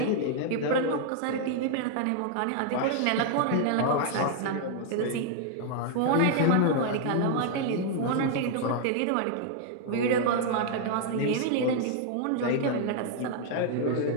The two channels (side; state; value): both; different; correlation 0.00